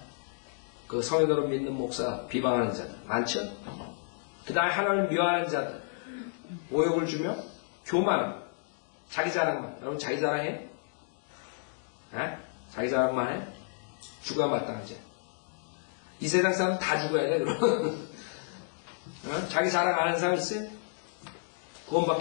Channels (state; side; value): silent; right; digital silence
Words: 그 성인으로 믿는 목사 비방하는 자들. 많죠? 그 다음에 하나님을 미워하는 자들. 모욕을 주며 교만함. 자기 자랑만. 여러분 자기 자랑해? 자기 자랑만 해? 죽어야 마땅하지. 이 세상 사람 다 죽어야 돼, 그럼. 자기 자랑 안 하는 사람 있어요?